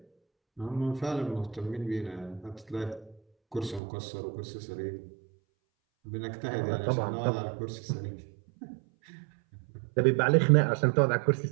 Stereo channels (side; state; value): left; drops out; at 3.8 s